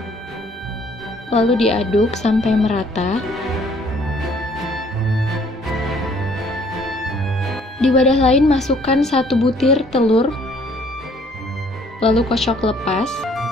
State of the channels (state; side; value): normal; both; correlation 0.60